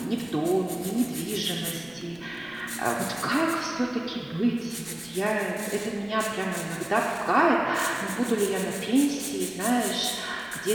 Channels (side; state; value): right; noise; rumble, 28 dB below the sound